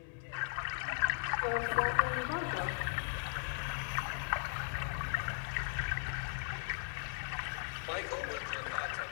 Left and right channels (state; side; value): silent; right; digital silence